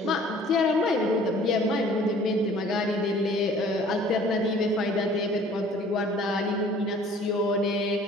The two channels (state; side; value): normal; both; correlation 0.52